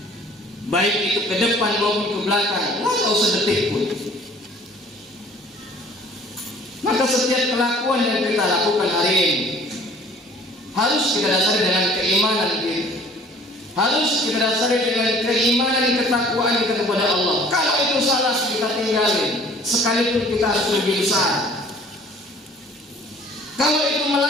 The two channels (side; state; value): both; normal; correlation 0.52